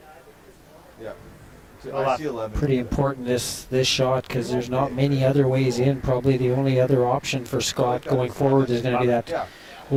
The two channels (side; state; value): both; identical; correlation 1.00